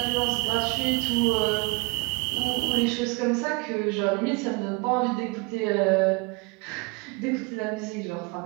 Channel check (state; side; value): quieter; left; 28.5 dB